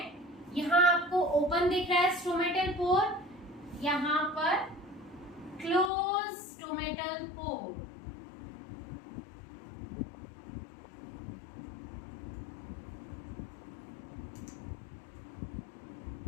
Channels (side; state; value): right; drops out; at 5.9 s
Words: यहां आपको ओपन दिख रहा है स्टोमेटल पोर, यहां पर close stomatal pore.